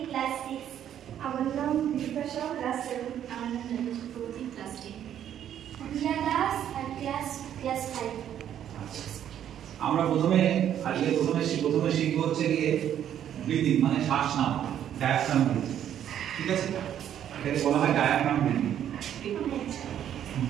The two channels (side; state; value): left; quieter; 10.2 dB